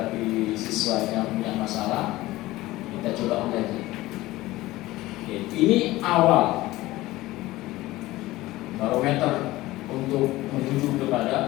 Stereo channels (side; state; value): right; quieter; 18.0 dB